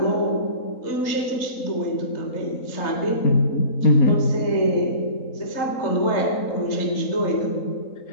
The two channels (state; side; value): late; right; 3.9 ms